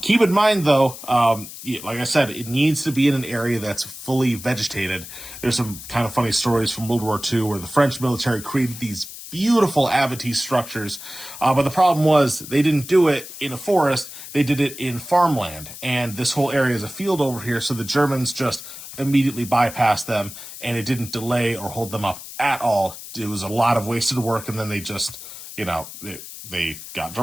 Keep in mind, though, like I said, it needs to be in an area that's fully vegetated. There's some kind of funny stories from World War II where the French military created these beautiful Abatis structures, but the problem was they didn't do it in a forest, they did it in farmland, and this whole area is a field over here, so the Germans just immediately bypassed them, and it didn't delay or hold them up at all. It was a lot of wasted work, and then they just, they got in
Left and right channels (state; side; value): noise; left; hiss, 13 dB below the sound